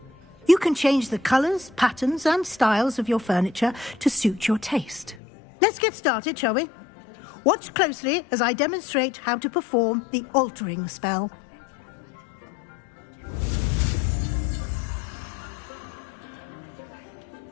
You can change the colors, patterns, and styles of your furniture to suit your taste. Let's get started, shall we? Watch closely as I demonstrate how to perform the altering spell.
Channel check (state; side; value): drops out; right; at 5.2 s